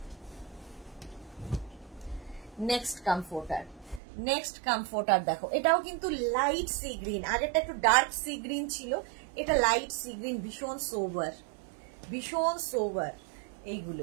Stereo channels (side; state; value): left; drops out; at 4.0 s